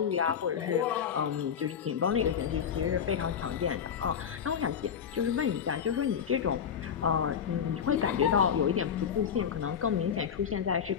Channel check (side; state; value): right; quieter; 7.8 dB